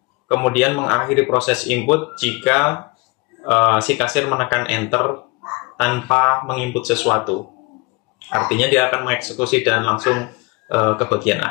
kemudian mengakhiri proses input jika si kasir menekan enter tanpa menginput sesuatu. Artinya dia akan mengeksekusi dan langsung ke bagian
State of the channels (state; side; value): quieter; right; 25.9 dB